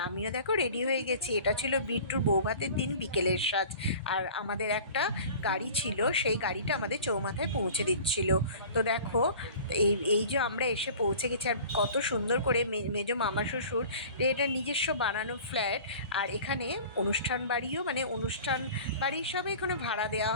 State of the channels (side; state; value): both; inverted; correlation -0.43